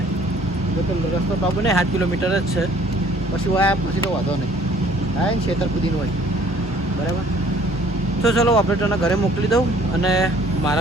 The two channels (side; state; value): both; normal; correlation 0.57